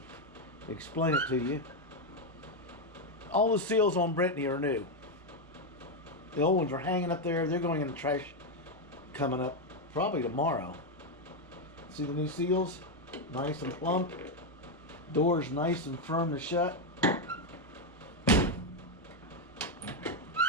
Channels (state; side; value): normal; both; correlation 0.04